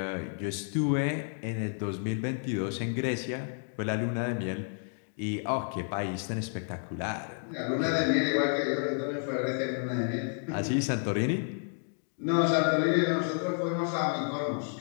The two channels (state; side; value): silent; right; 57 dB below the other